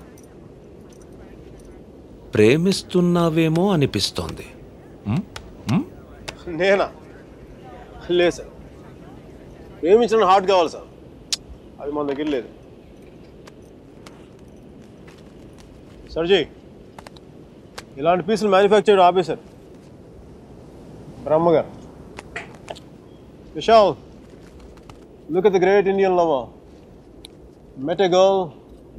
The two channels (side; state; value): both; identical; correlation 1.00